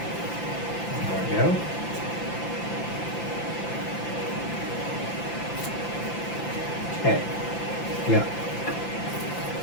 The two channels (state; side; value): late; right; 5.9 ms